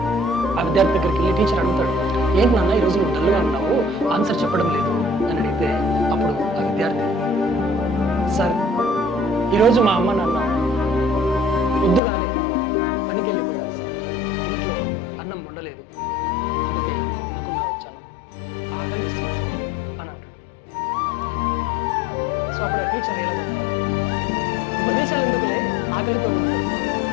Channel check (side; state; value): right; drops out; at 12.0 s